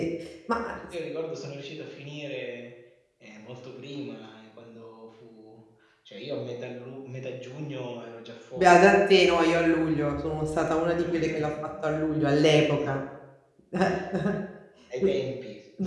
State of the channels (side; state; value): both; identical; correlation 1.00